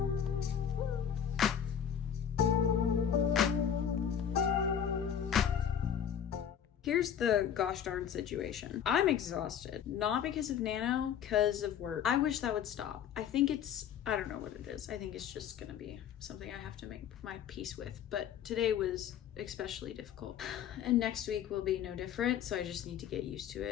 here's the gosh darn situation. I'm exhausted, not because of Nano, because of work. I wish that would stop. I think I don't know what it is. I think it's just gonna be something I have to make my peace with. But today was especially difficult. And next week will be no different. So I just need to get used to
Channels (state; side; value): quieter; right; 8.7 dB